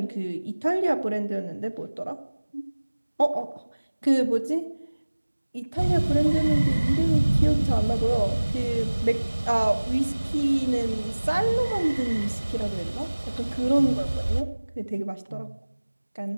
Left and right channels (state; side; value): inverted; both; correlation -1.00